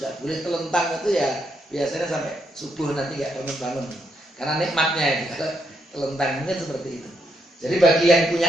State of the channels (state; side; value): normal; both; correlation 0.78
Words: boleh telentang itu ya biasanya sampai subuh nanti nggak bangun-bangun. Karena nikmatnya itu, kalau telentang mungkin seperti itu. Jadi bagi yang